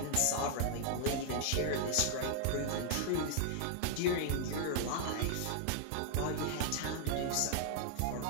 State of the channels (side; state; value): both; different; correlation 0.00